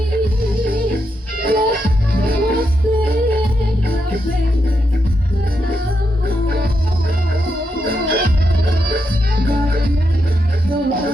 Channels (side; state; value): both; normal; correlation 0.83